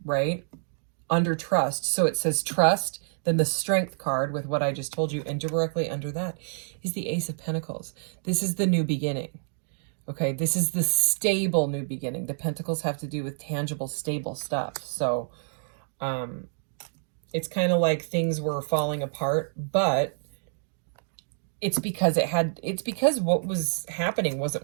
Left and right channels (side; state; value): left; silent; digital silence